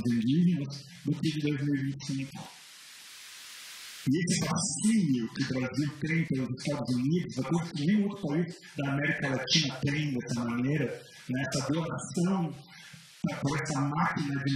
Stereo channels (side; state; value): both; identical; correlation 1.00